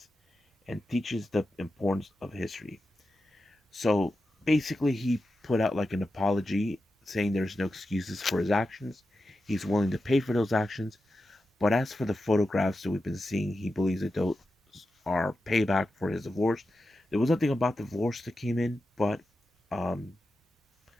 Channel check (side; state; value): both; normal; correlation 0.90